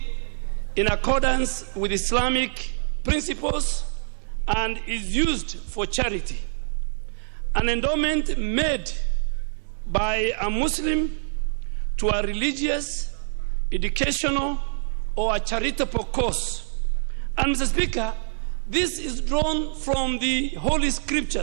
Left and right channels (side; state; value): left; silent; digital silence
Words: in accordance with Islamic principles and is used for charity. An endowment made by a Muslim to a religious, educational, or a charitable cause. And Mr. Speaker, this is drawn from the Holy